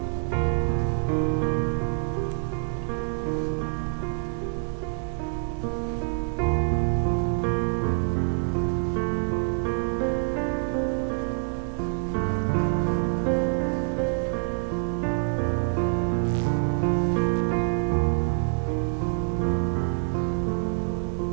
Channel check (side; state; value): left; silent; 61 dB below the other